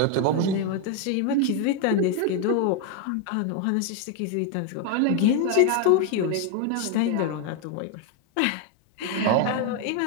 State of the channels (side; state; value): both; different; correlation 0.01